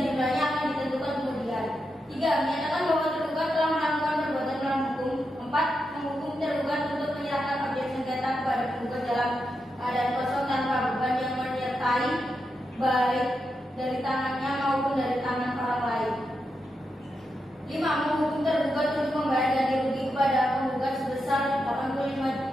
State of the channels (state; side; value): normal; both; correlation 0.86